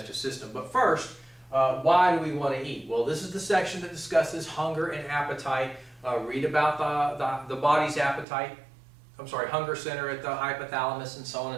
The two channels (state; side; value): drops out; left; at 8.2 s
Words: system. But first, why do we want to eat? Well, this is the section that discusses hunger and appetite. Read about the body's appetite. Hunger center at the hypothalamus and so on